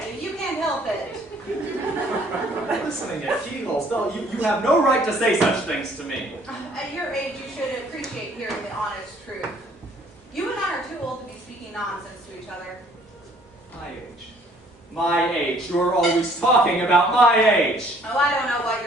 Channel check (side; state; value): both; normal; correlation 0.59